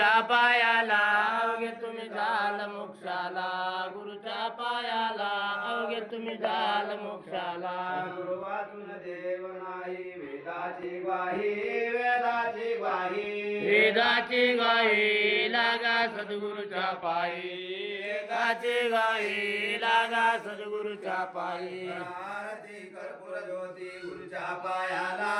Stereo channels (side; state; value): both; identical; correlation 1.00